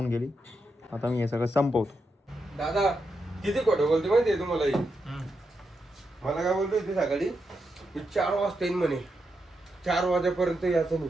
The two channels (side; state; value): both; normal; correlation 0.85